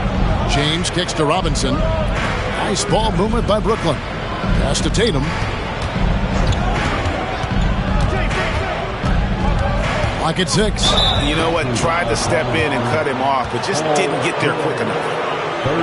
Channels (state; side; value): identical; both; correlation 1.00